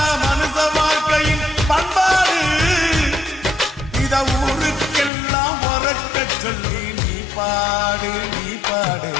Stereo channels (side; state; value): right; drops out; at 5.1 s